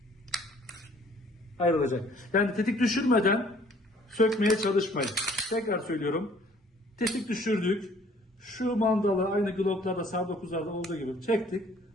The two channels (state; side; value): normal; both; correlation 0.57